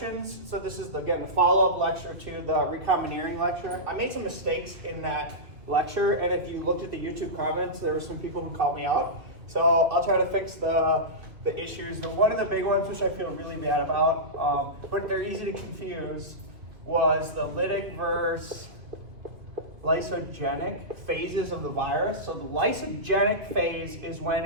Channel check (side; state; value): left; late; 2.7 ms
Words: So this is, again, the follow-up lecture to the recombineering lecture. I made some mistakes in that lecture, and if you looked at the YouTube comments, there were some people who called me out. So I'll try to fix the issues. One of the big ones, which I feel really bad about, but they're easy to confuse, was the lytic versus lysogenic phases of the virus. So the lysogenic phase is